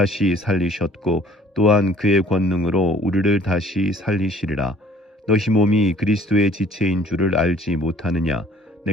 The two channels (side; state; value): both; normal; correlation 0.54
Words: 살리셨고 또한 그의 권능으로 우리를 다시 살리시리라. 너희 몸이 그리스도의 지체인 줄을 알지 못하느냐.